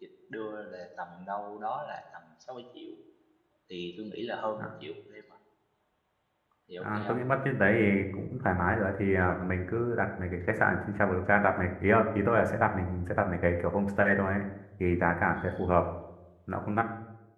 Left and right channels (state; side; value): identical; both; correlation 1.00